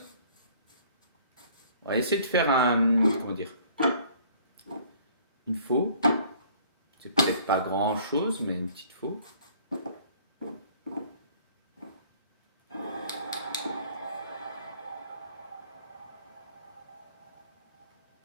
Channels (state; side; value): inverted; both; correlation -0.55